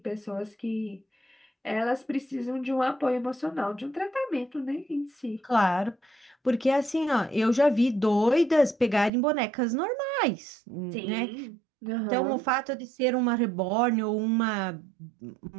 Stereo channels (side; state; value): left; drops out; at 9.1 s